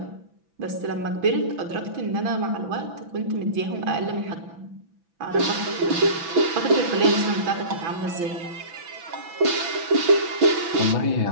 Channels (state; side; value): late; left; 6.0 ms